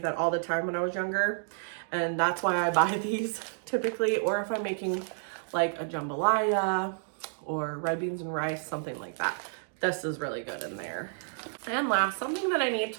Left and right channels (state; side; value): silent; left; digital silence